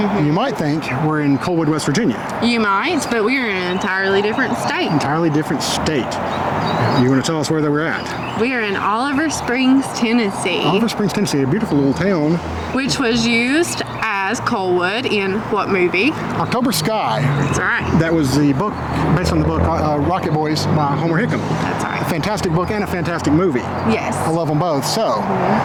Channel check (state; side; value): identical; both; correlation 1.00